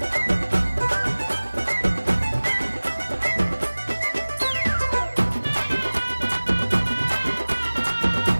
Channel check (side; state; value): both; inverted; correlation -1.00